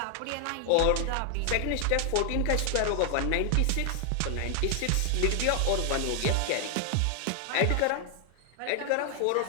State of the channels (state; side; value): different; both; correlation 0.00